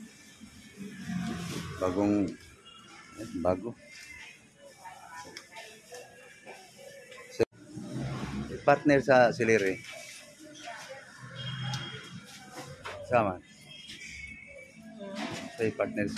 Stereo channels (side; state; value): both; identical; correlation 1.00